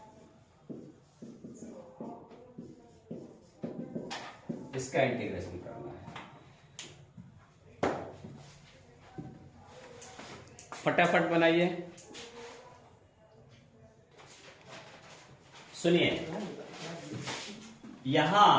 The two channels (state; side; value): identical; both; correlation 1.00